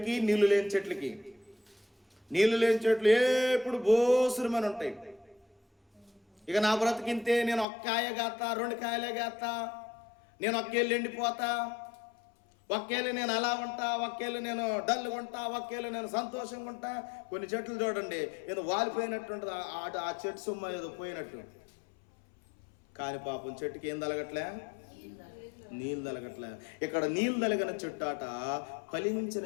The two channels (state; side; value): drops out; right; at 7.7 s